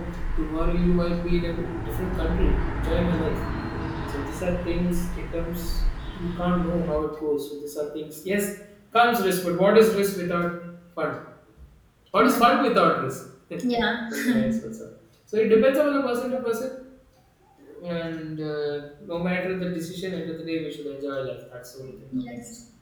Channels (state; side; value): identical; both; correlation 1.00